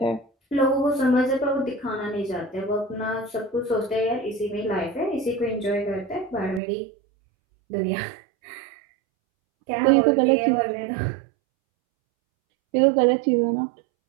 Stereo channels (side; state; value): left; drops out; at 6.6 s